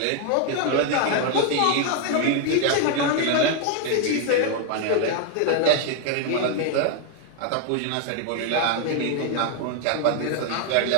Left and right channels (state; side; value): different; both; correlation 0.00